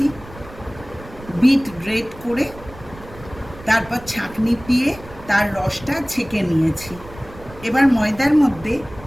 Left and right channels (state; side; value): noise; right; rumble, 18 dB below the sound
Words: বিট গ্রেট করে তারপর ছাঁকনি দিয়ে তার রসটা ছেঁকে নিয়েছি। এবার ময়দার মধ্যে